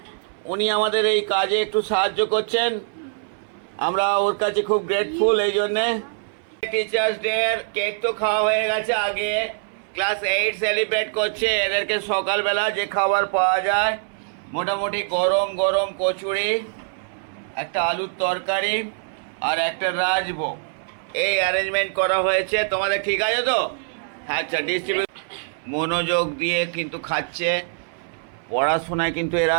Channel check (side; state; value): left; silent; 60 dB below the other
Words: উনি আমাদের এই কাজে একটু সাহায্য করছেন। আমরা ওর কাছে খুব গ্রেটফুল এই জন্যে। টিচার্স ডে কেক তো খাওয়া হয়ে গেছে। আগে ক্লাস 8 সেলিব্রেট করছে। এদেরকে সকালবেলা যে খাবার পাওয়া যায়, মোটামুটি গরম গরম কচুরি, একটা আলুর তরকারি আর একটা রাজভোগ, এই অ্যারেঞ্জমেন্ট করা হয়েছে। তোমাদের ঠিক আছে তো? আচ্ছা, ডিস্ট্রিবিউট মনোযোগ দিয়ে কিন্তু খাচ্ছে। পড়াশোনায় কিন্তু এরা